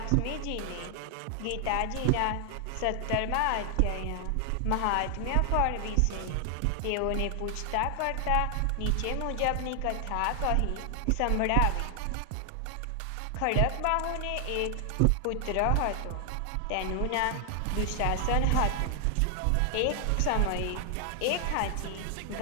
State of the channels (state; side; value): different; both; correlation 0.00